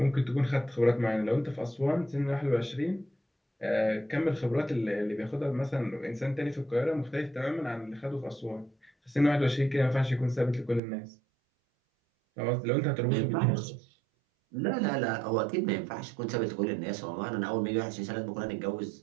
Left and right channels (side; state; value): left; drops out; at 10.8 s